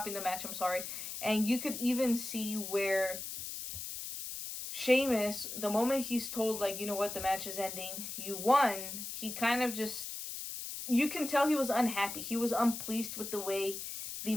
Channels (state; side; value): noise; left; hiss, 7 dB below the sound